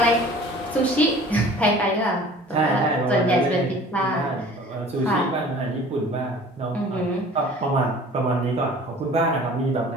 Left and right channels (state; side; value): normal; both; correlation 0.47